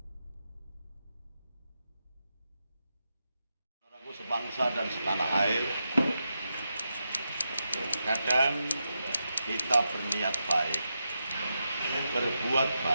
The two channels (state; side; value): inverted; both; correlation -0.88